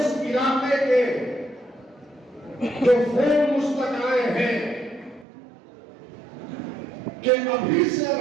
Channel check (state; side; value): drops out; left; at 5.2 s